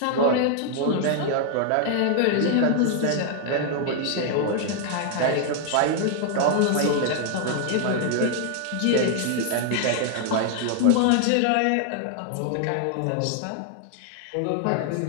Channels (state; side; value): different; both; correlation 0.00